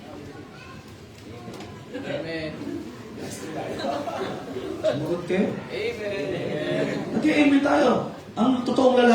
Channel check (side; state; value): both; identical; correlation 1.00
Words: Amen. Sumagot kayo? Amen. Nag-amen tayo. Ang totoong